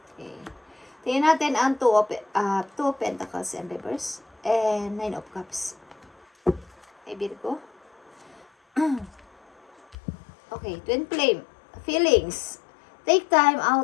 Okay. Tingnan natin ang 2 of Pentacles and Reverse and 9 of Cups. Okay, Virgo. Okay, Twin Flame. Feelings. Take time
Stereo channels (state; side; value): drops out; right; at 10.0 s